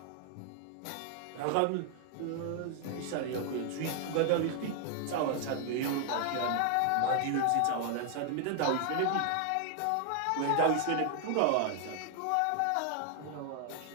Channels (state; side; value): different; both; correlation 0.00